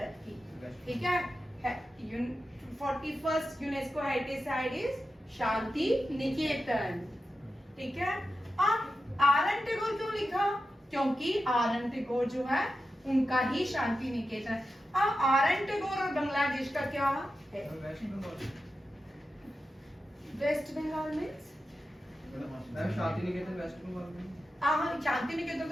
की, ठीक है। 41st UNESCO heritage site is Shanti Niketan, ठीक है। अब आर एन टैगोर क्यों लिखा? क्योंकि आर एन टैगोर जो है उनका ही शांति निकेतन है। अब आर एन टैगोर और बांग्लादेश का क्या है? Waste Bengal means Shanti Niketan waste Bengal में। हाँ, शांति निकेतन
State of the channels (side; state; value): both; normal; correlation 0.91